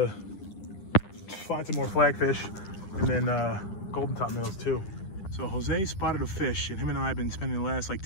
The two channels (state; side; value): late; right; 10 ms